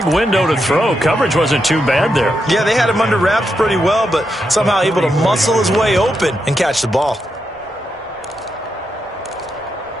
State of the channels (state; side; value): normal; both; correlation 0.84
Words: window to throw. Coverage wasn't too bad there. Yeah, they had him under wraps pretty well, but somehow able to muscle his way open and catch the ball.